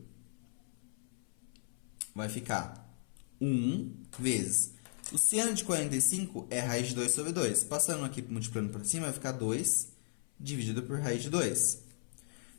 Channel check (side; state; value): right; silent; 54 dB below the other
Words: vai ficar 1 vezes. O seno de 45 é raiz de 2 sobre 2. Passando aqui, multiplicando por cima, vai ficar 2 dividido por raiz de 2.